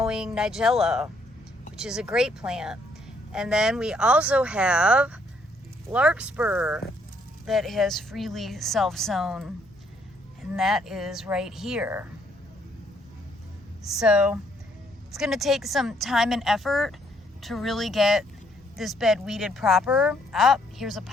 nigella, which is a great plant. And then we also have larkspur that has freely self-sown, and that is right here. So it's going to take some time and effort to really get this bed weeded proper. Ah, here's a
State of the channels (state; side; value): normal; both; correlation 0.69